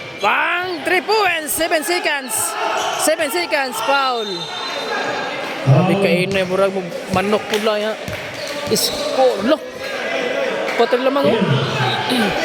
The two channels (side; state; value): both; identical; correlation 1.00